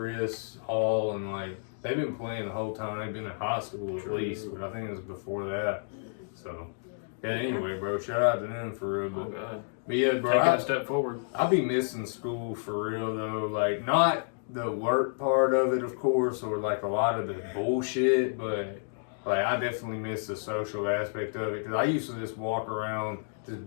Hall and like they've been playing the whole time. They've been in high school at least, but I think it was before that. So, yeah, anyway, bro, shout out to them for real. Oh, God. But yeah, bro, Taking a step forward. I be missing school for real, though. Like, not the work part of it, of course, or like a lot of the bullshit, but like, I definitely miss the social aspect of it. Because I used to just walk around, just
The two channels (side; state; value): right; silent; digital silence